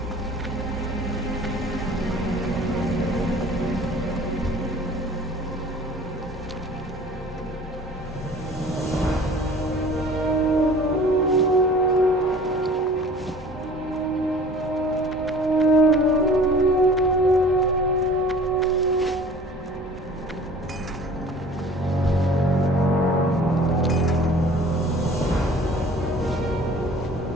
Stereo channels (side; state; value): both; normal; correlation 0.47